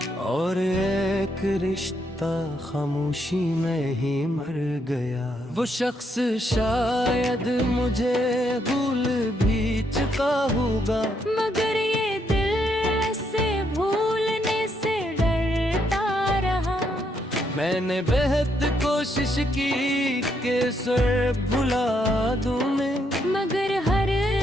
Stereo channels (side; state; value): both; normal; correlation 0.76